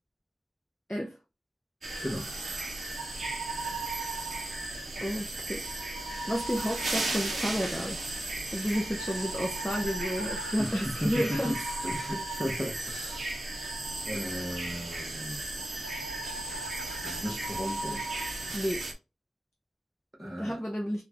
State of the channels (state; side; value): normal; both; correlation 0.90